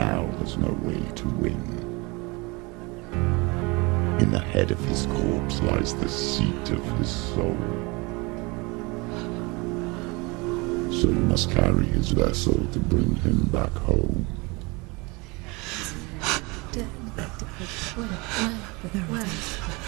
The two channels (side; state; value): left; quieter; 26.5 dB